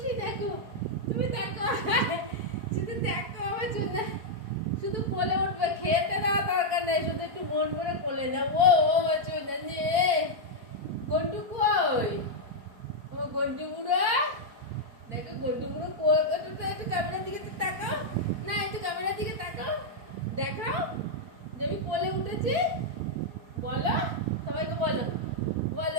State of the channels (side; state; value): left; late; 4.5 ms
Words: দেখো, তুমি দেখো শুধু দেখো আমার সোনা, শুধু কোলে উঠবে, খেতে দেওয়া দরকার নেই, শুধু একটু মন করে কোলে দাও। ও আমার সোনা নিয়ে গন্টু কই, ও গন্টু বুড়ো দেখো, গন্টু বুড়ো কই, একটু ক্যামেরার দিকে তাকাও না, একটু ক্যামেরার দিকে তাকাও, দেখাও যে আমি কোলে উঠেছি, বলো সবাইকে, বলো